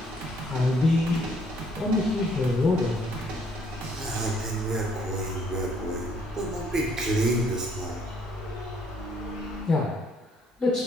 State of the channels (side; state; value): both; normal; correlation 0.66